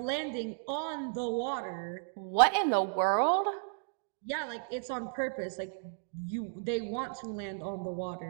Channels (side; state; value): left; silent; digital silence